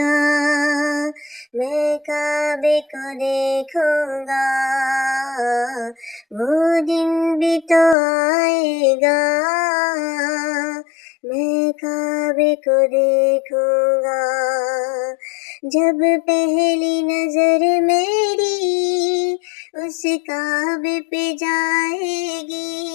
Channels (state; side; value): drops out; right; at 8.0 s